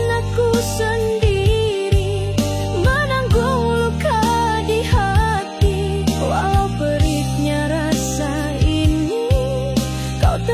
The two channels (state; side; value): identical; both; correlation 1.00